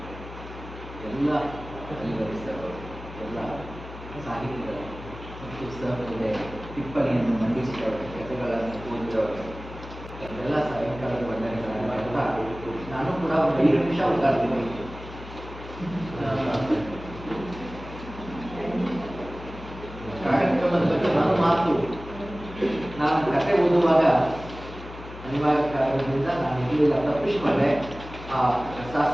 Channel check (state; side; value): noise; left; hum, 13 dB below the sound